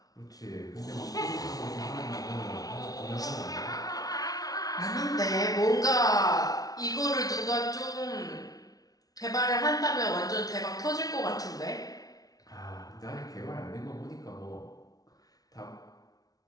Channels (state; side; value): late; right; 0.18 ms